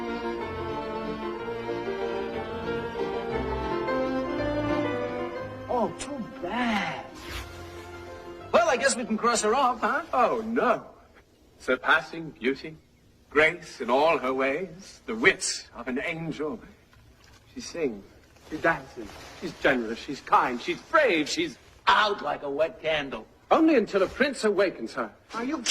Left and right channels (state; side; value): identical; both; correlation 1.00